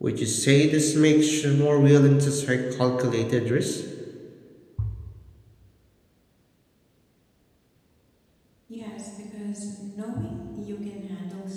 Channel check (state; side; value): identical; both; correlation 1.00